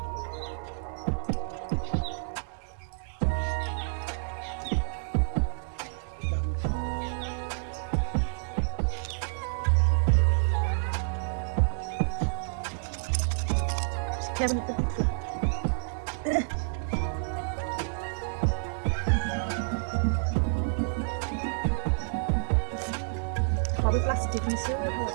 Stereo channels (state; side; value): silent; left; 57 dB below the other